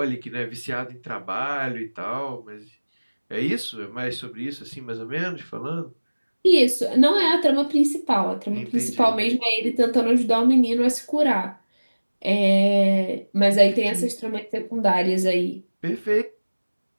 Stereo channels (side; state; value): both; inverted; correlation -1.00